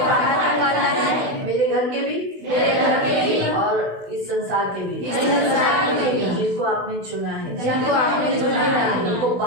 है, मेरे घर के भी और इस संसार के भी, जिनको आपने चुना है, उनको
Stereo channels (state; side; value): late; left; 16 ms